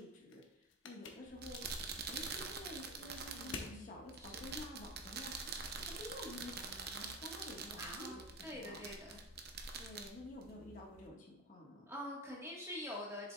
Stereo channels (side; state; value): both; normal; correlation 0.24